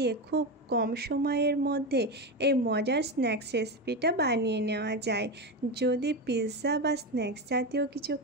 খুব কম সময়ের মধ্যে এই মজার স্ন্যাক্স রেসিপিটা বানিয়ে নেওয়া যায়। যদি পিৎজা বা স্ন্যাক্স জাতীয় কিছু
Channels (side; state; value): both; normal; correlation 0.16